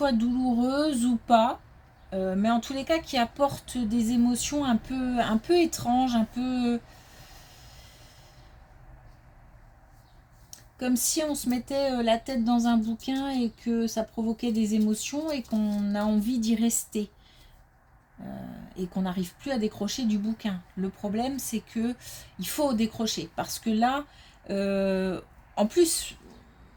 douloureuses ou pas, mais en tous les cas qui apportent des émotions un peu étranges, un peu comme si on se mettait la tête dans un bouquin et que ça provoquait des émotions et qu'on a envie d'y rester. Et qu'on n'arrive plus à décrocher du bouquin. Le problème, c'est que il faut décrocher parce que là, en plus,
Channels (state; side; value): identical; both; correlation 1.00